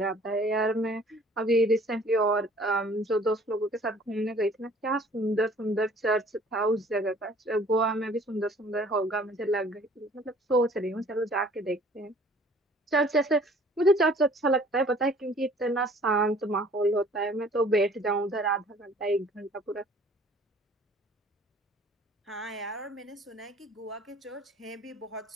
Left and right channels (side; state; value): both; normal; correlation 0.53